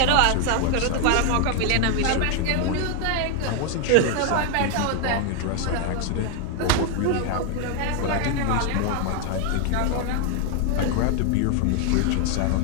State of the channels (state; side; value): different; both; correlation 0.01